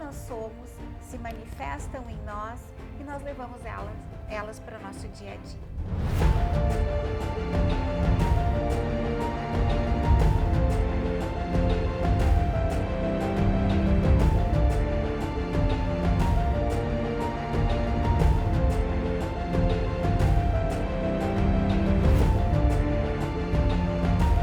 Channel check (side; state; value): both; identical; correlation 1.00